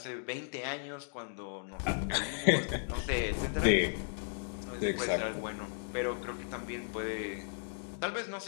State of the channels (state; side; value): silent; right; digital silence